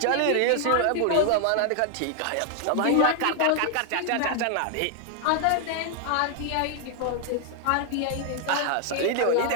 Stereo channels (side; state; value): both; different; correlation 0.00